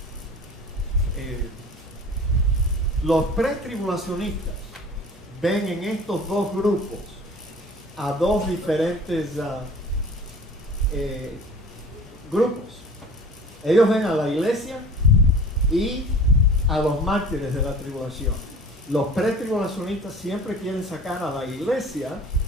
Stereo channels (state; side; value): normal; both; correlation 0.43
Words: Los pretribulacionistas ven en estos 2 grupos a 2 diferentes grupos. Ellos ven a la iglesia y a los mártires de la tribulación. Los pretribulacionistas siempre quieren sacar a la iglesia